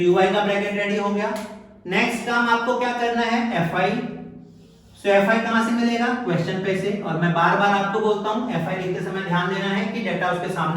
ui का ब्रैकेट रेडी हो गया। नेक्स्ट काम आपको क्या करना है fi। सो fi कहां से मिलेगा क्वेश्चन पे से। और मैं बार बार आपको बोलता हूं fi लिखते समय ध्यान देना है कि डाटा उसके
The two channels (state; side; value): identical; both; correlation 1.00